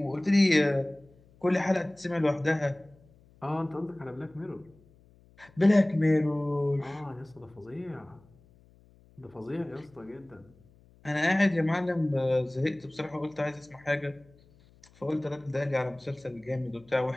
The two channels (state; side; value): noise; left; hum, 28 dB below the sound